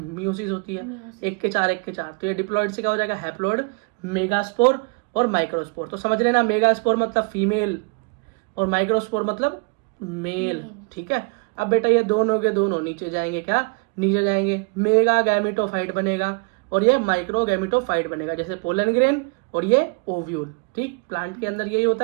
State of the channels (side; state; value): left; quieter; 33.3 dB